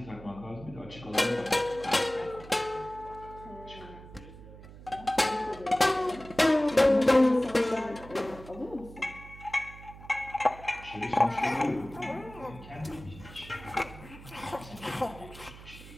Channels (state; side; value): noise; right; hum, 17 dB below the sound